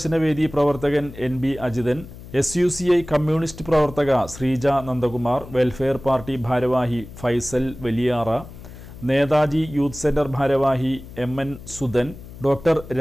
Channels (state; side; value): noise; left; hum, 16 dB below the sound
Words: പ്രവർത്തകൻ NB അജിതൻ, SUCI കമ്മ്യൂണിസ്റ്റ് പ്രവർത്തക ശ്രീജ നന്ദകുമാർ, വെൽഫെയർ പാർട്ടി ഭാരവാഹി ഫൈസൽ വലിയാറ, നേതാജി യൂത്ത് സെന്റർ ഭാരവാഹി MN സുധൻ, ഡോക്ടർ